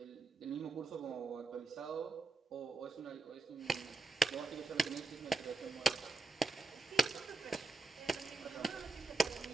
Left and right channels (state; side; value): quieter; left; 3.6 dB